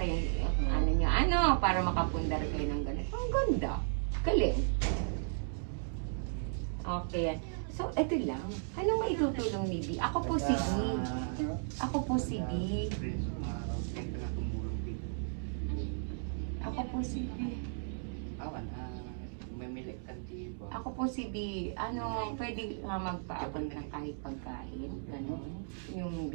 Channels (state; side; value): silent; left; digital silence